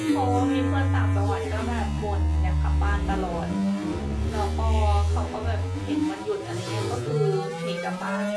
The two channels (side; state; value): both; identical; correlation 1.00